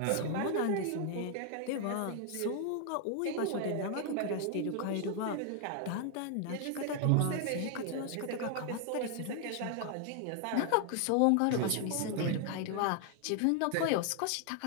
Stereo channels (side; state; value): both; different; correlation 0.00